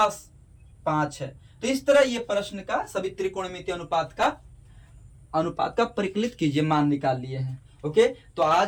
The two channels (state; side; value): identical; both; correlation 1.00